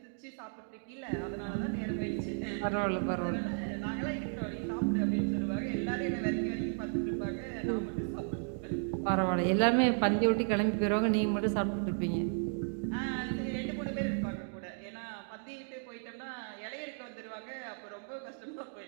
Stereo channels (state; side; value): silent; left; 55 dB below the other